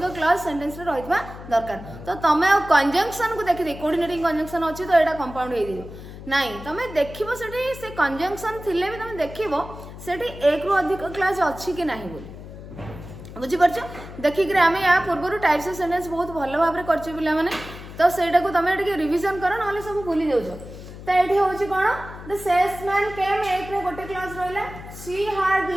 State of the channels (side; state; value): left; noise; hum, 14 dB below the sound